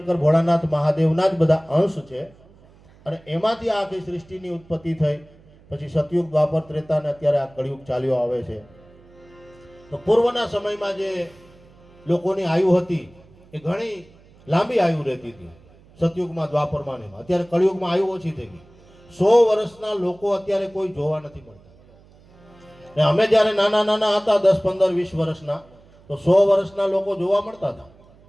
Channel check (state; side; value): noise; right; hum, 27 dB below the sound